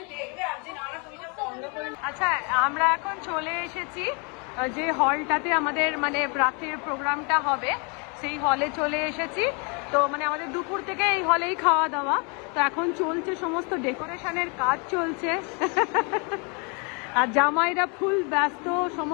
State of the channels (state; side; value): quieter; right; 33.8 dB